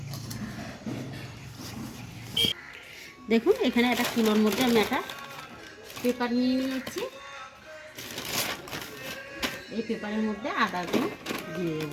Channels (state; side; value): identical; both; correlation 1.00